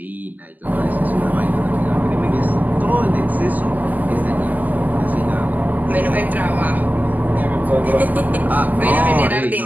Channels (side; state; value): left; late; 0.082 ms